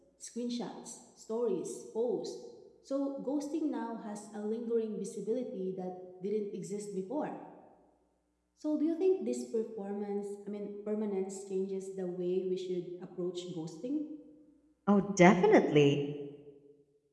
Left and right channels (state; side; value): identical; both; correlation 1.00